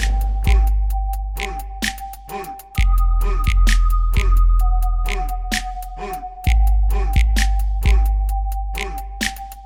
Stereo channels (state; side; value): identical; both; correlation 1.00